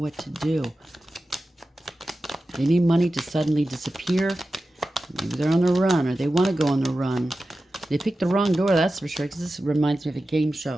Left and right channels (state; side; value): normal; both; correlation 0.94